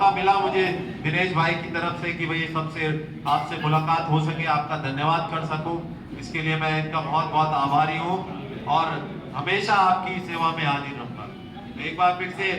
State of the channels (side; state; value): both; identical; correlation 1.00